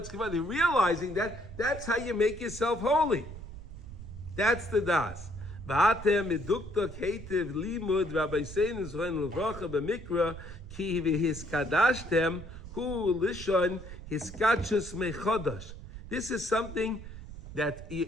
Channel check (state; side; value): noise; right; rumble, 12 dB below the sound